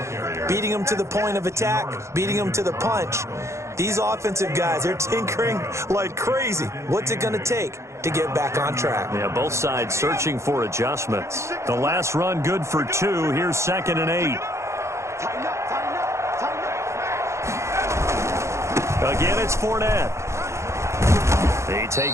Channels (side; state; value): left; late; 0.14 ms